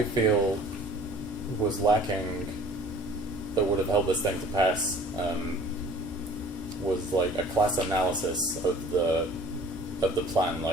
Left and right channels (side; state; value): both; normal; correlation 0.49